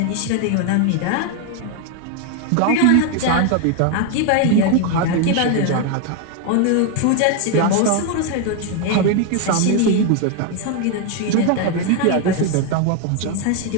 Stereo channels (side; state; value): both; different; correlation 0.01